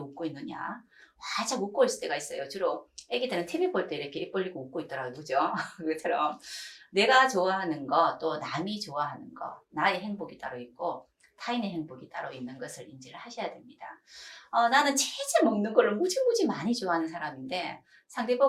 있느냐? 활짝 웃고 있을 때가 있어요. 주로 애기들은 TV 볼 때 이렇게 입 벌리고 웃고 있더라고요. 그죠? 그것처럼 내가 좋아하는 거, 또 남이 좋아하는 거, 나의 행복이 따로 있고 타인의 행복이 따로 있는 것을 인지를 하셔야 됩니다. 나는 치즈 먹는 걸 무지무지 많이 좋아하는 사람인데 상대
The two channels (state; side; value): identical; both; correlation 1.00